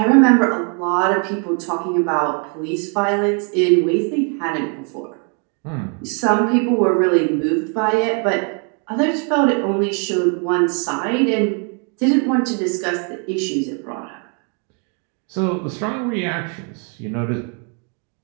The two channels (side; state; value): left; quieter; 38.6 dB